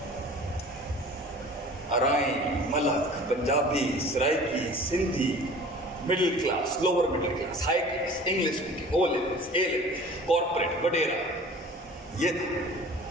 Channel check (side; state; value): both; normal; correlation 0.44